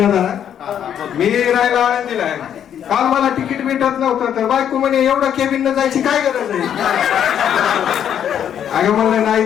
जरा, मी राहायला आनंदीला आहे. काल मला तिकीट भेटत नव्हतं तर बायको म्हणे एवढं केबिन न जायची काय गरज आहे. अगं म्हणलं नाही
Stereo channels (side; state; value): right; quieter; 9.3 dB